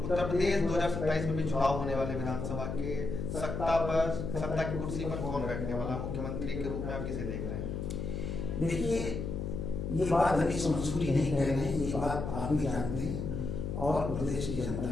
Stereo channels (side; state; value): left; noise; hum, 4 dB below the sound